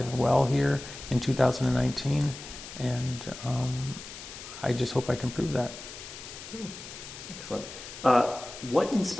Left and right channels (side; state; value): left; noise; hiss, 13 dB below the sound